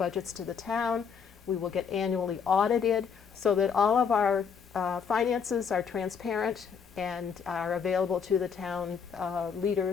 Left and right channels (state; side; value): quieter; right; 6.6 dB